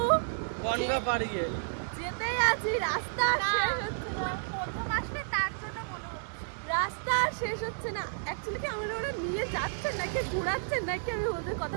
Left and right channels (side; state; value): left; silent; digital silence